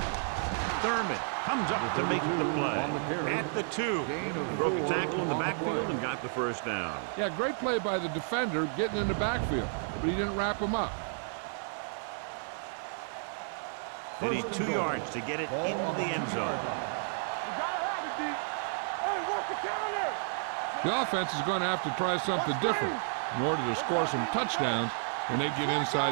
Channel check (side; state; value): left; silent; 57 dB below the other